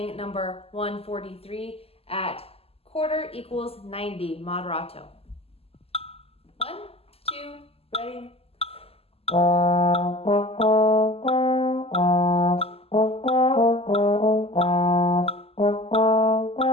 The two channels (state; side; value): late; right; 0.29 ms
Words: number 143 at quarter equals 90, moderato. 1, 2, ready?